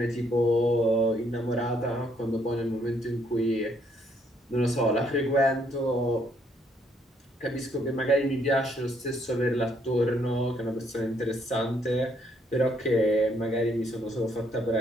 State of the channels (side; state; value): both; normal; correlation 0.69